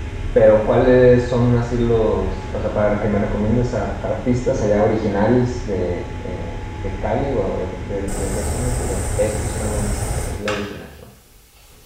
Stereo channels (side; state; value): both; identical; correlation 1.00